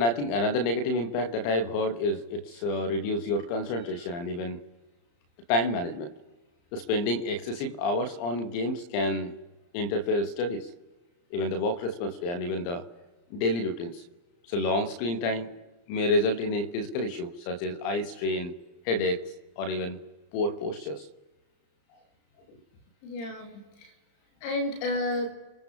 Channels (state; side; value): late; right; 35 ms